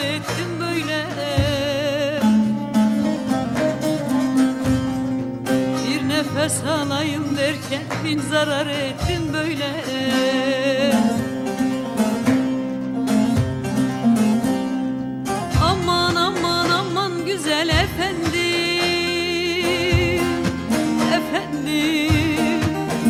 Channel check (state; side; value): identical; both; correlation 1.00